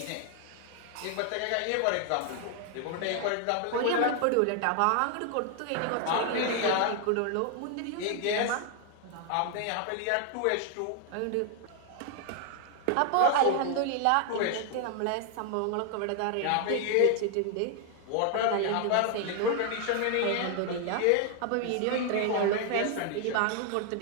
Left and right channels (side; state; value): both; different; correlation 0.00